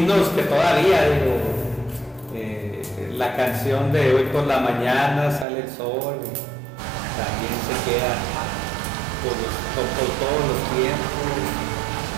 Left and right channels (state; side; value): drops out; left; at 5.5 s